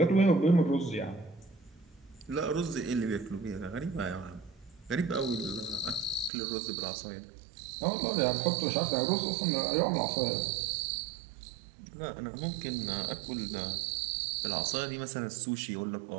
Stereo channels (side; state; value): left; drops out; at 6.3 s